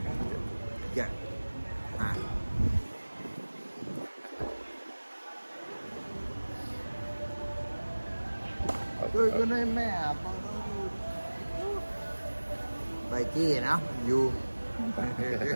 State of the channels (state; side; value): inverted; both; correlation -1.00